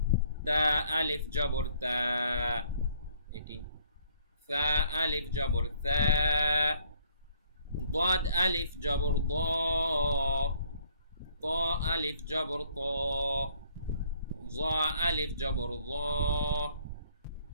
তা আলিফ জবর তা, এটি। ফা আলিফ জবর তা। ضاد আলিফ জবর দ। ত আলিফ জবর ত। জ আলিফ জবর জ।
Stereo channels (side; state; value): both; inverted; correlation -0.63